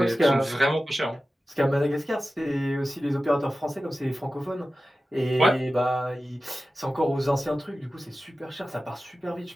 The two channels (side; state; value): both; normal; correlation 0.94